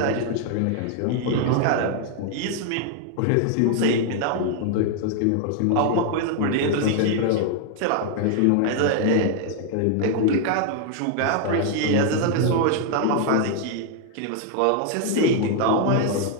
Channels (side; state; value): both; different; correlation 0.00